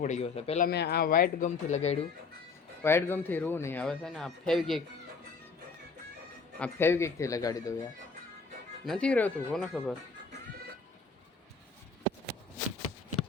પડી ગયું છે. પહેલાં મેં આ વ્હાઇટ ગમથી લગાડ્યું, વ્હાઇટ ગમથી રૂ નહીં. હવે છે ને આ ફેવિકિકથી લગાડી દઉં યાર, નથી રહેતું કોને ખબર.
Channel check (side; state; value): right; quieter; 4.6 dB